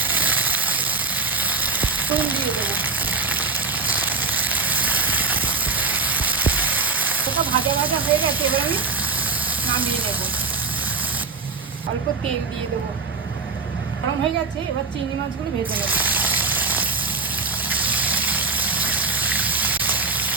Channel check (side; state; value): left; quieter; 4.3 dB